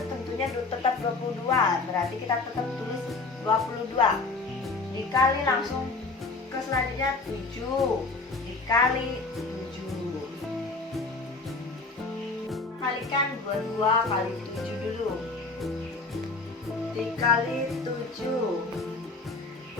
tentunya tetap 22, berarti kita tetap tulis 22 dikali langsung ke selanjutnya 7 dikali 7. Kalikan 22 kali 7 dulu, dikali 7.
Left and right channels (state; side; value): quieter; right; 3.6 dB